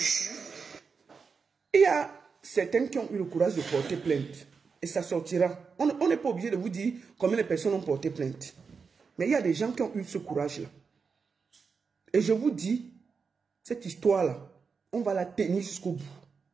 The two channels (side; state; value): left; quieter; 5.3 dB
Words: Il y a certains qui ont eu le courage de porter plainte. Et ça sortira. On n'est pas obligé de vous dire combien de personnes ont porté plainte. Mais il y a des gens qui ont eu ce courage-là. Et je vous dis, cette histoire-là, on va la tenir jusqu'au bout.